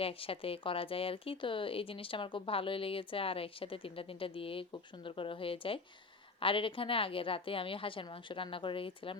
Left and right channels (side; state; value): right; quieter; 4.0 dB